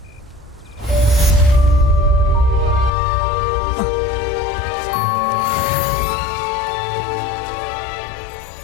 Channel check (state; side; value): drops out; right; at 2.9 s